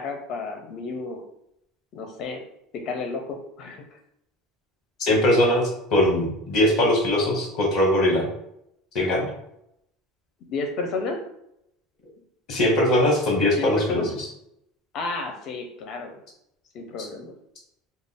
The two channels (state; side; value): normal; both; correlation 0.33